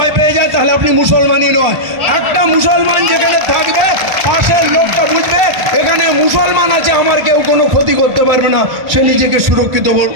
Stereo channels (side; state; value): left; late; 1.5 ms